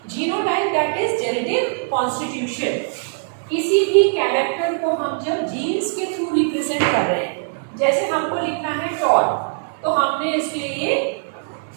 Genotype that is genetic constitution. किसी भी कैरेक्टर को हम जब जीन्स के थ्रू रिप्रेजेंट कर रहे हैं, जैसे हमको लिखना है टॉल, तो हमने इसके लिए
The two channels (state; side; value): silent; left; 65 dB below the other